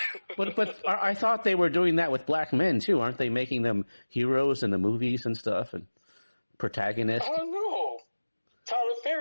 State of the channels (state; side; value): inverted; both; correlation -1.00